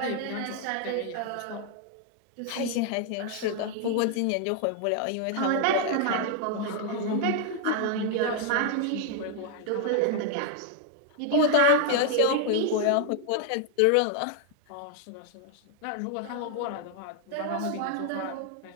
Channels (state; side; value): different; both; correlation 0.00